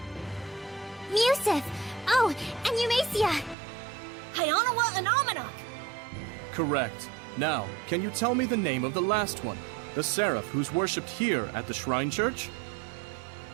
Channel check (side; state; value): left; drops out; at 3.6 s